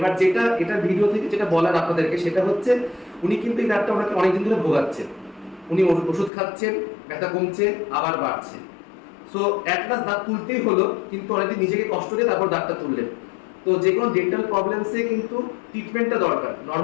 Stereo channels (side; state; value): right; drops out; at 6.3 s